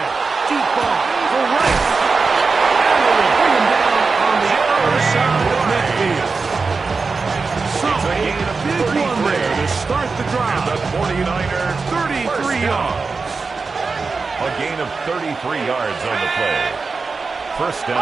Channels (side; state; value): left; quieter; 4.4 dB